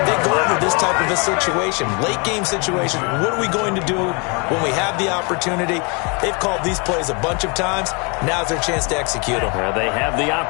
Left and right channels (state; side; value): quieter; right; 32.5 dB